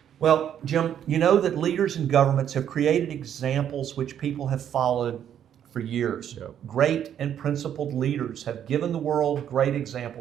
Well, Jim, you know that leaders and governments have created examples which people have followed for years. Great and principled leaders have given the world great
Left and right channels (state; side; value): quieter; left; 9.7 dB